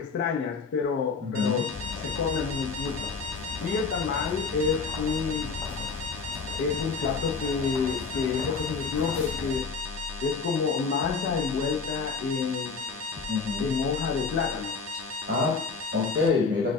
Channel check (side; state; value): right; quieter; 4.7 dB